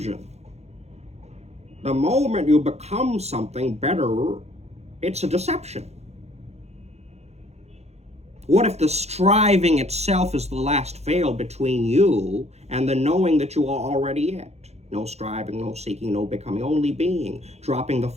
The moment you become something better, it's a deception. What if the striving itself is the last veil between you and the knowing that you are already it? No striving, no seeking, no becoming, only being. Dropping the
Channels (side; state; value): left; late; 0.31 ms